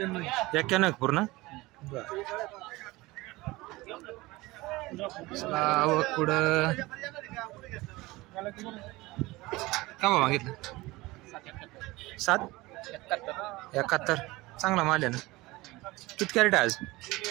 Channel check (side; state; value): left; quieter; 20.8 dB